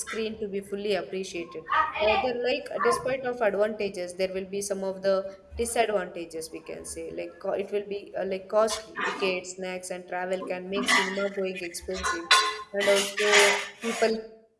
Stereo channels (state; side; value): identical; both; correlation 1.00